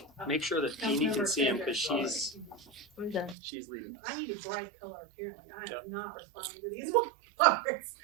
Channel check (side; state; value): left; drops out; at 3.4 s